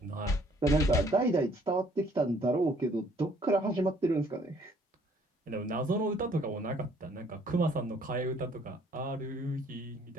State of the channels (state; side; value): normal; both; correlation 0.61